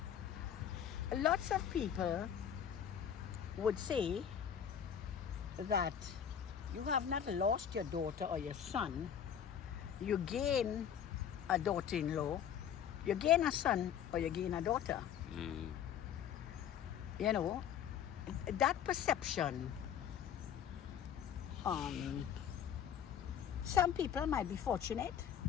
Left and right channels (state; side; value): quieter; right; 8.9 dB